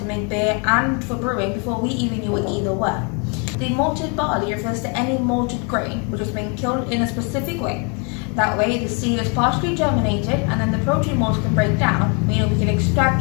make beer and for brewing before we even knew what either were. The malted barley refers to any malted grain which has been killed in a specific way. That way, the seed is partially germinated and then the protein mold can break down, meaning we can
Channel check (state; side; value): quieter; right; 35.6 dB